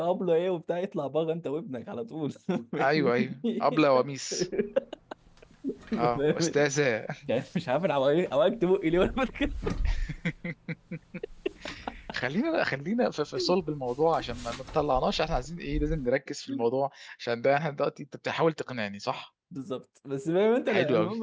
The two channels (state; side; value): identical; both; correlation 1.00